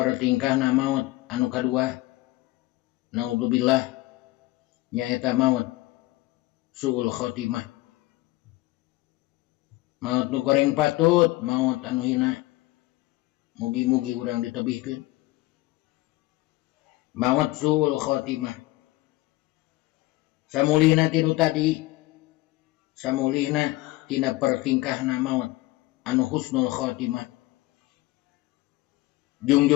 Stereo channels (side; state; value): right; quieter; 19.3 dB